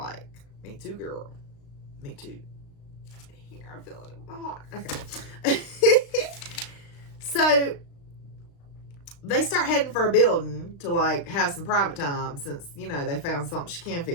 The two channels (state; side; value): late; right; 36 ms